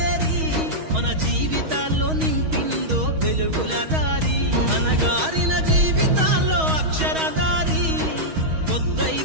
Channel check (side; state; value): left; late; 6.3 ms